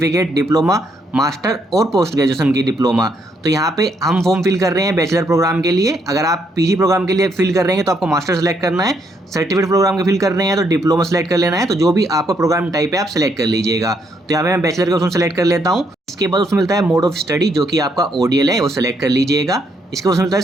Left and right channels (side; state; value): both; normal; correlation 0.74